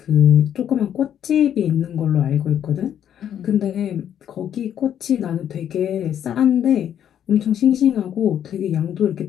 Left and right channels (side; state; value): right; quieter; 9.8 dB